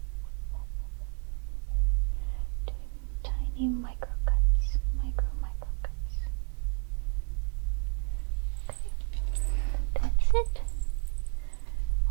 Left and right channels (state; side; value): quieter; left; 36.9 dB